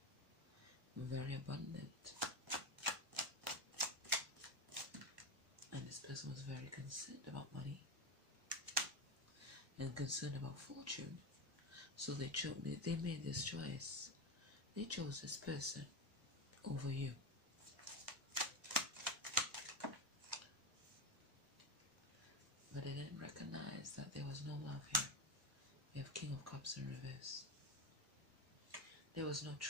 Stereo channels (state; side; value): late; left; 1.1 ms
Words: very abundant. And this person was very concerned about money and concerned about fortune. So they made this choice. They chose this person over you. But they didn't recognize that there was no love here. We have King of Cups in reverse. There was no